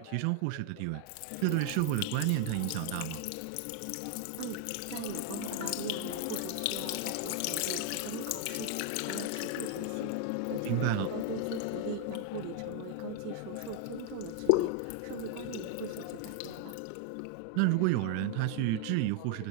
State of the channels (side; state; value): both; different; correlation 0.01